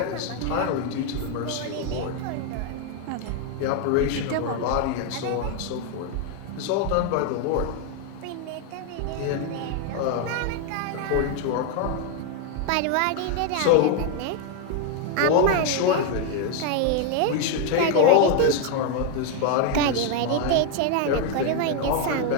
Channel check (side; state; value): both; different; correlation 0.01